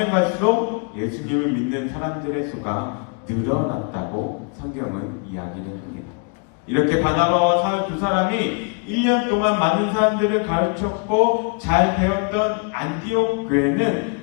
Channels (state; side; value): quieter; right; 37.4 dB